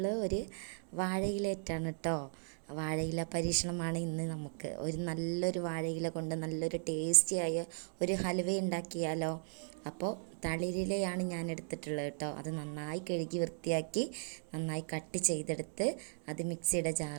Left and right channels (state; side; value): silent; left; digital silence